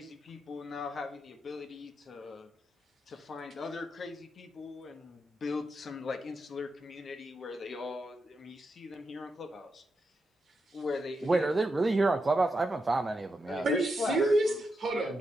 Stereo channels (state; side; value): normal; both; correlation 0.86